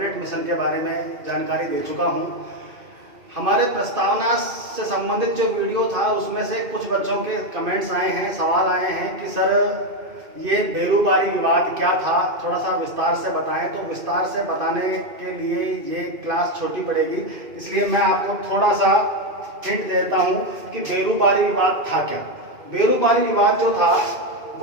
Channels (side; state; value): left; late; 2.5 ms